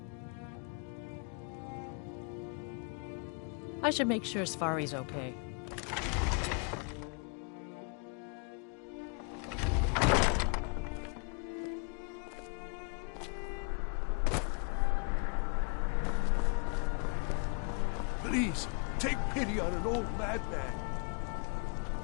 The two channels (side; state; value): right; quieter; 37.1 dB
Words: I should make sure Sfari's okay. Please, take pity on an old madman.